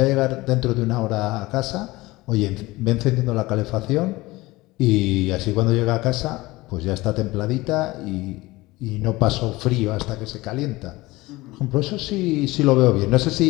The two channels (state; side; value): quieter; right; 20.3 dB